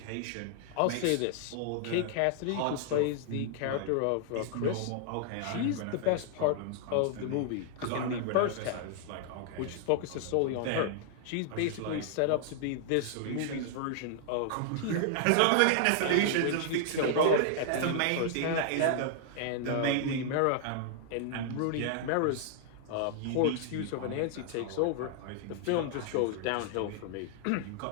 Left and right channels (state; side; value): different; both; correlation 0.00